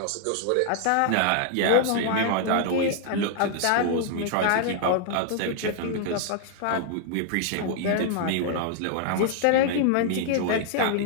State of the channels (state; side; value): different; both; correlation 0.00